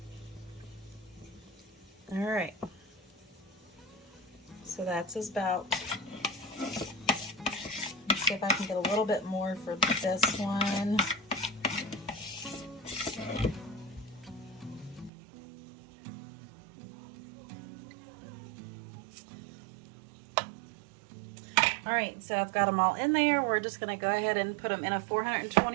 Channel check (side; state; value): left; drops out; at 15.1 s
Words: All right, so that's about, let's see if I can get a little bit more for this one. All right, so I've got them all in there. We're just gonna go ahead and put them in a